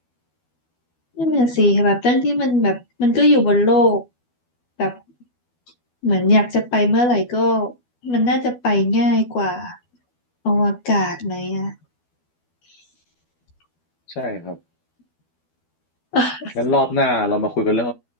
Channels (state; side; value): late; right; 12 ms